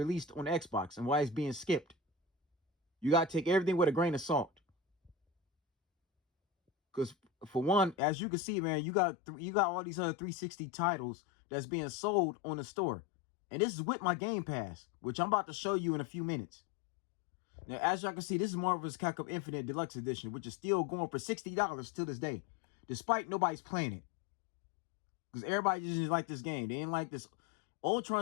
on Xbox and why it's being skipped. You got to take everything with a grain of salt. Because for one, as you can see, man, you got all these other 360 titles that's being sold on the store. And this is with my Game Pass, which I'm about to show you in a few minutes. Now, as y'all can see, this is Marvel's Capcom Infinite Deluxe Edition, which is still going for $60 to this day, despite nobody's playing it. Because everybody just didn't like this game. They didn't like this.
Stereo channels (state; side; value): drops out; right; at 8.0 s